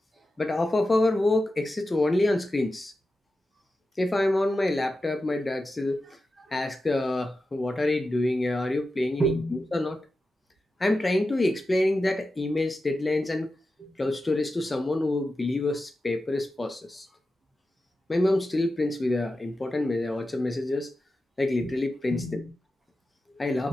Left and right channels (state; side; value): normal; both; correlation 0.92